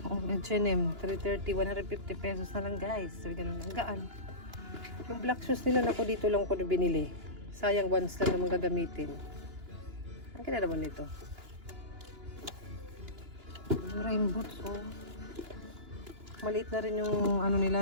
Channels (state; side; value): late; left; 2.9 ms